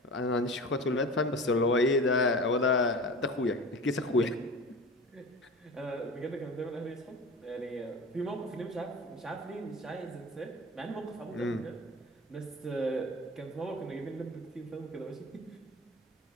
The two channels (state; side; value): normal; both; correlation 0.34